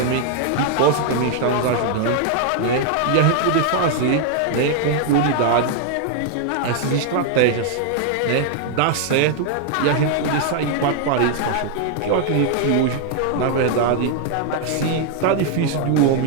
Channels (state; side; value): different; both; correlation 0.00